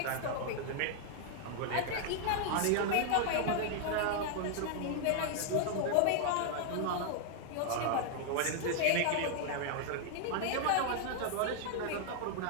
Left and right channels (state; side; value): different; both; correlation 0.00